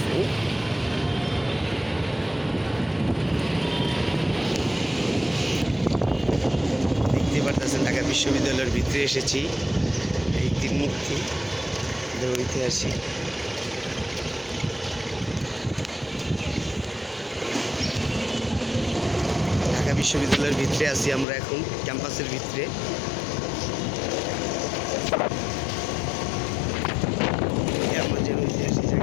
দেখতেই পাচ্ছেন ঢাকা বিশ্ববিদ্যালয়ের ভিতরে এসেছি। এই তিন মূর্তি ঐতিহাসিক। ঢাকা বিশ্ববিদ্যালয়ের ভিতরে আছি আমরা এখন, ক্যাম্পাসের ভিতরে। আমাদের ঐতিহাসিক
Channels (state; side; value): drops out; right; at 21.2 s